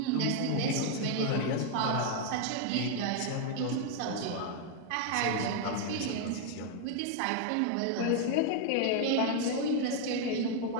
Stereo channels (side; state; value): both; different; correlation 0.00